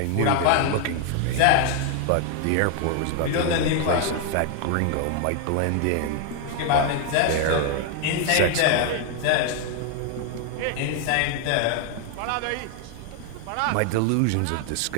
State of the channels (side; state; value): both; different; correlation 0.00